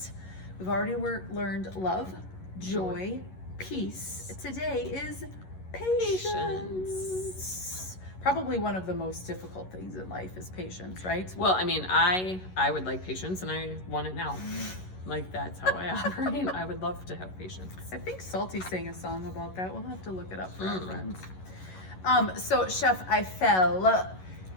We've already learned love, joy, peace. Today is patience. Probably one of the most difficult things in life is patience, right? Well, I mean, I would like patience, and I want it now. Like, that's how I operate. I would love to have patience. I think Salty sang a song about that. We'll have to look it up for our friends. So Chef Eiffel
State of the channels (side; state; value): right; late; 11 ms